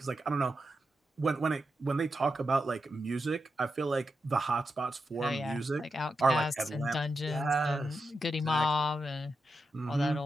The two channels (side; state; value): both; normal; correlation 0.87